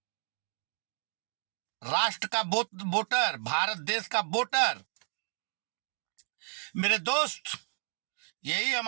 राष्ट्र का वोटर, भारत देश का वोटर। मेरे दोस्त, यही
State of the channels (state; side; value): silent; left; digital silence